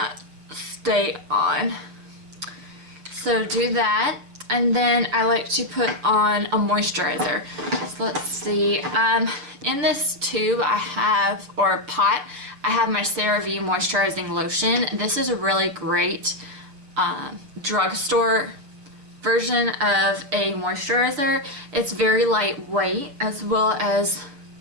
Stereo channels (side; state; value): left; late; 7.0 ms